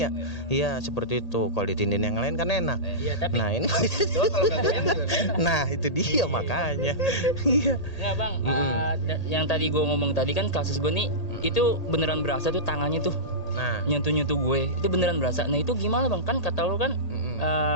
ya. Iya seperti itu. Kalau ditindin yang lain kan enak. Iya, tapi Nah ini kalau nggak goyang juga kan? nah itu dia makanya. Iya. Nggak bang, yang tadi gue ngomong tadi kan kasus gue nih, itu beneran berasa tuh tangannya tuh Nah nyentuh gue, itu beneran berasa. Nah itu gimana bang? Kan kata lo kan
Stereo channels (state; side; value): late; right; 1.8 ms